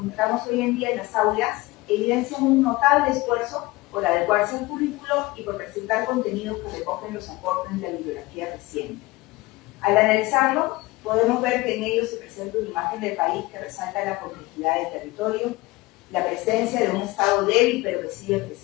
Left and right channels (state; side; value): quieter; right; 21.0 dB